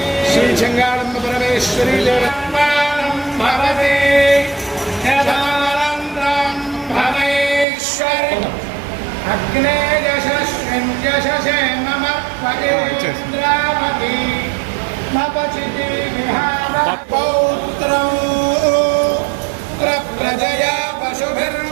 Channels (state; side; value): drops out; left; at 7.7 s